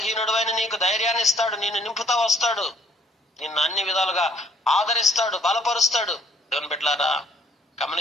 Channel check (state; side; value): normal; both; correlation 0.62